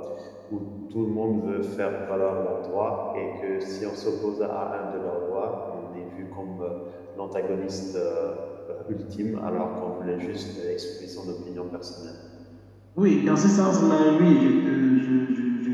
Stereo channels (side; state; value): both; identical; correlation 1.00